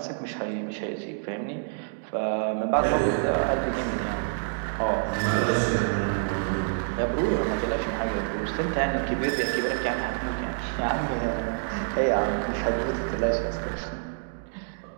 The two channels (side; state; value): left; silent; digital silence